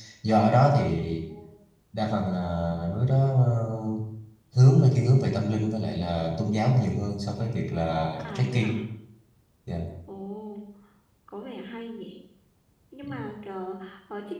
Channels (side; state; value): both; identical; correlation 1.00